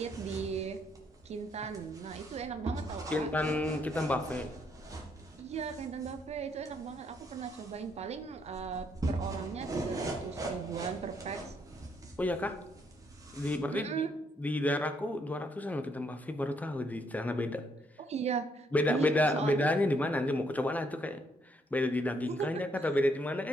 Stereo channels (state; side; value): normal; both; correlation 0.72